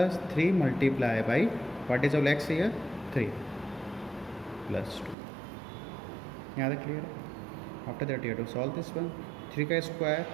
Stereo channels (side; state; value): left; drops out; at 5.2 s